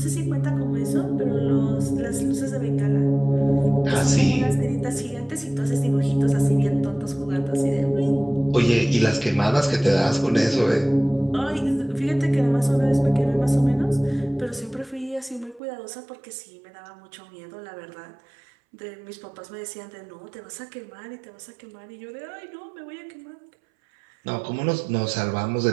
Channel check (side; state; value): left; drops out; at 15.6 s